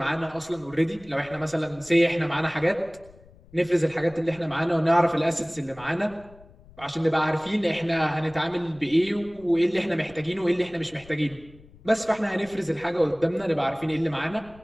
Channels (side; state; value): left; noise; rumble, 24 dB below the sound